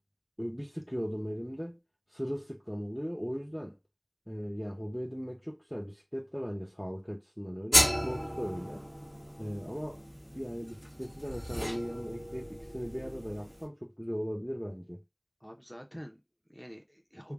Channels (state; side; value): identical; both; correlation 1.00